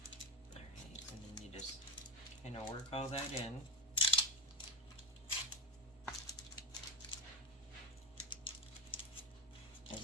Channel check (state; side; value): normal; both; correlation 0.17